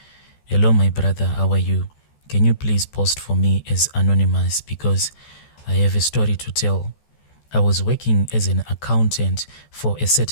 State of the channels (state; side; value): late; right; 14 ms